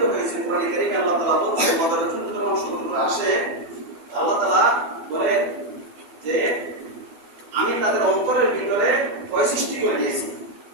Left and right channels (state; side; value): late; left; 12 ms